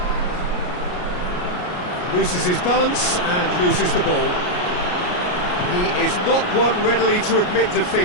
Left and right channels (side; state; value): right; late; 33 ms